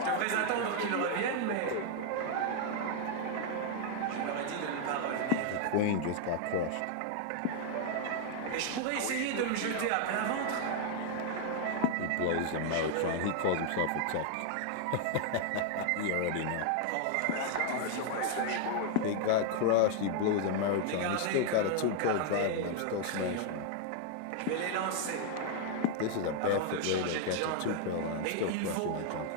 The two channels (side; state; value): both; different; correlation 0.00